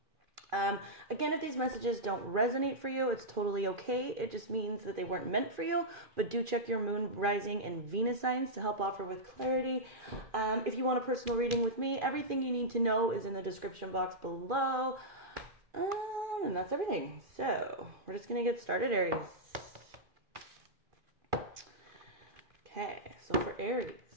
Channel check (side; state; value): left; late; 2.4 ms